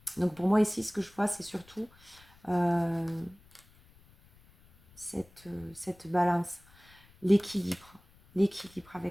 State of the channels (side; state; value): left; noise; rumble, 27 dB below the sound